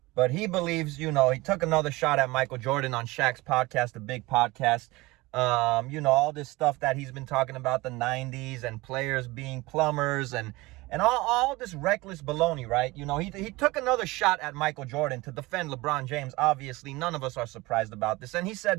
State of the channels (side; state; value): left; quieter; 21.5 dB